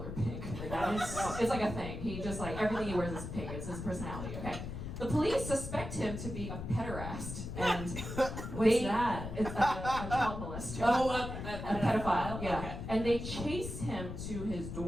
pink. Like that is, it's like a thing. He just like everything he wears is pink. It's his personality. Okay. The police suspect him to be a pederast, and What's that? It's a child molester. Oh, a pedophile. Yeah. Okay. And they chase him to his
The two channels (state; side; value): noise; left; rumble, 7 dB below the sound